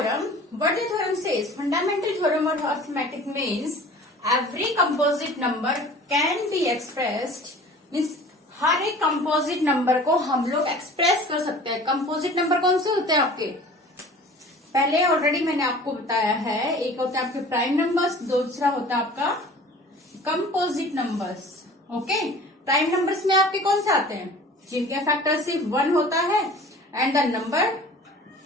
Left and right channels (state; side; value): normal; both; correlation 0.44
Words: What the theorem says? Fundamental theorem of arithmetic means every composite number can be expressed, means हर एक composite number को हम लोग express कर सकते हैं। कंपोजिट नंबर कौन से होते हैं आपके? पहले ऑलरेडी मैंने आपको बताया है, एक होता है आपके प्राइम नंबर्स, दूसरा होता है आपका composite numbers. Okay, prime numbers में आपके कौन से आते हैं? जिनके फैक्टर सिर्फ 1 होता है and the number